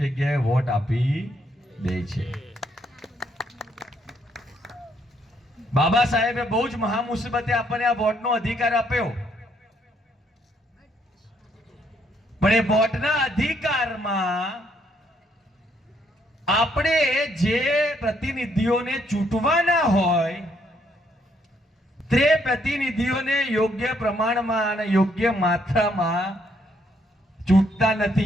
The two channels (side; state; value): both; normal; correlation 0.71